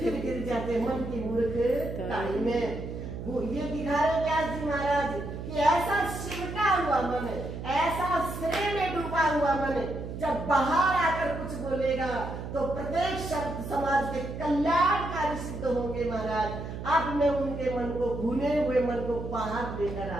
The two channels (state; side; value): noise; right; hum, 8 dB below the sound